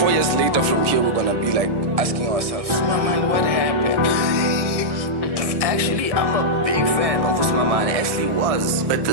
years later from here, we're gonna be like asking ourselves, Usimamane, what happened? Actually, I'm a big fan of Usimamane, actually was. But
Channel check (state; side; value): late; left; 1.6 ms